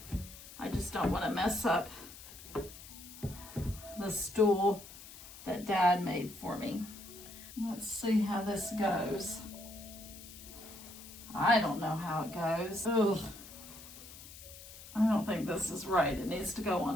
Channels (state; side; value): noise; left; hiss, 16 dB below the sound